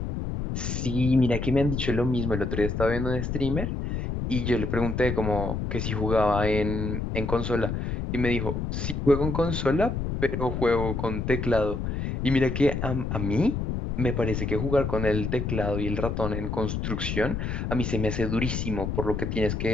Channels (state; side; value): noise; left; rumble, 2 dB below the sound